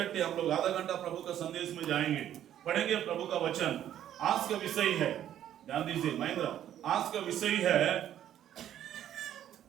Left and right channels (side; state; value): left; quieter; 11.1 dB